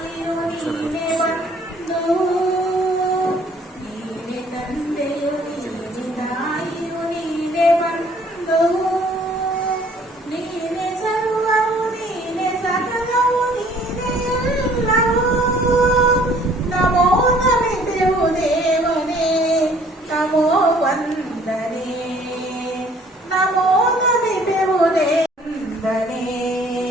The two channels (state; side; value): normal; both; correlation 0.57